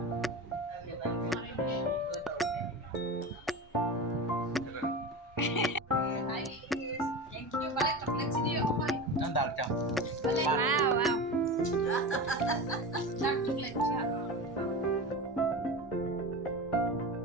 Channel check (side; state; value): both; normal; correlation 0.27